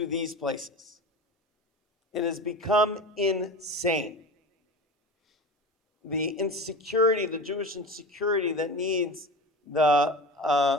these places. It has become insane. The insecurity, the Jewish insecurity that needs the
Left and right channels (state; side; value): normal; both; correlation 0.31